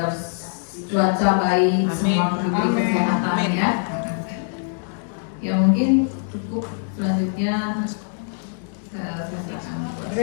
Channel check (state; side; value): silent; right; digital silence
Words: cuaca baik, semua diberi kesehatan ya. Ya mungkin cukup, selanjutnya saya serahkan.